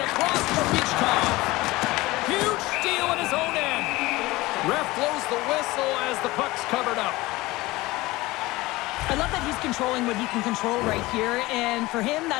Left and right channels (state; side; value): quieter; right; 20.0 dB